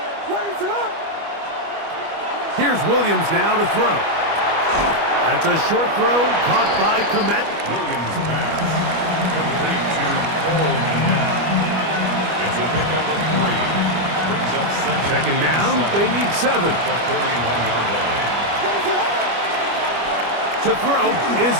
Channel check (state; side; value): late; left; 25 ms